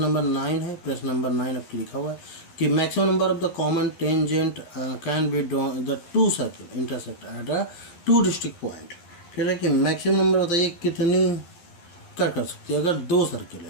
नंबर 9 है। प्रश्न नंबर 9 आपके लिखा हुआ है कि maximum number of the common tangent can be the two circle intersect at a two district point. कह रहे हैं कि मैक्सिमम नंबर बताइए कितनी कर सकती है। अगर दो सर्किल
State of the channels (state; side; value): late; right; 11 ms